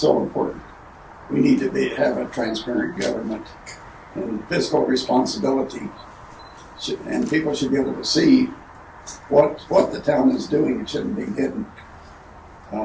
important. We need to have a transparent government and fiscal responsibility, and people should be able to see what the town is doing. It shouldn't be hidden.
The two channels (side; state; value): both; identical; correlation 1.00